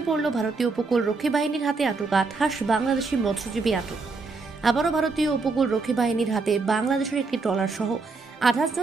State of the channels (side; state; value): left; quieter; 4.1 dB